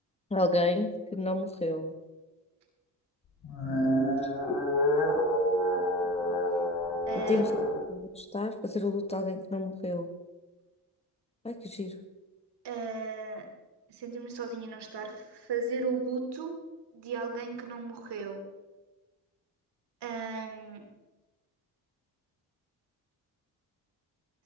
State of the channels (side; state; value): both; normal; correlation 0.33